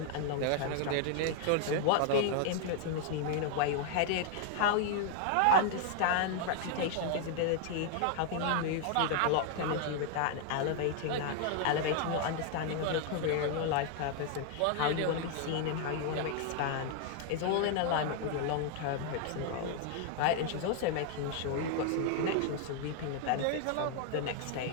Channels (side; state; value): both; different; correlation 0.00